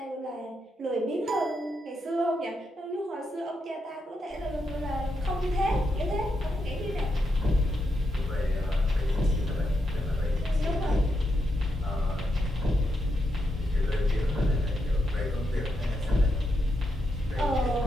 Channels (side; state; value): both; normal; correlation 0.83